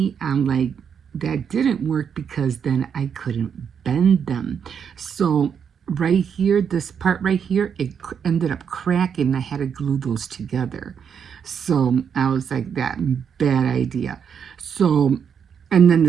I'm like, that didn't work, because then I couldn't bend them. So right here, this part right here, it ended up cracking. I had to glue those together. So I was like, that bad idea. So, and then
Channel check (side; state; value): left; quieter; 7.3 dB